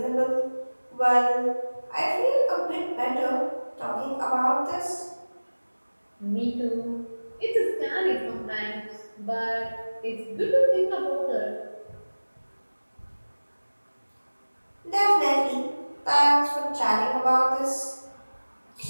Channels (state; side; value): inverted; both; correlation -1.00